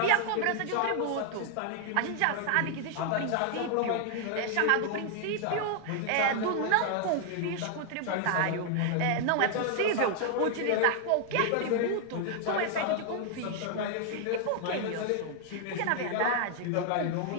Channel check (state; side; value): different; both; correlation 0.00